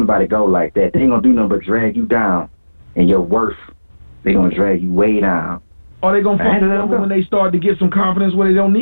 go like that. They ain't going to do nothing but drag you down. And your worth, they going to drag you way down. Or they going to fuck up when they start to get some confidence where they don't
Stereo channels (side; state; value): both; inverted; correlation -1.00